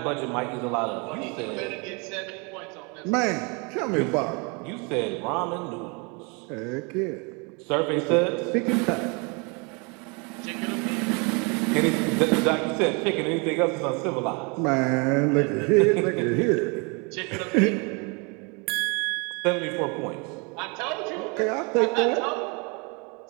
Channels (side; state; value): left; quieter; 31.6 dB